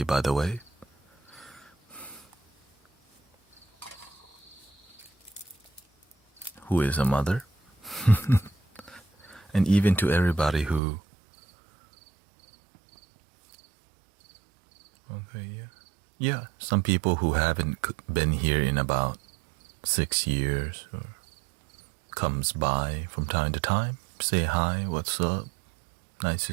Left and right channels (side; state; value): left; drops out; at 10.8 s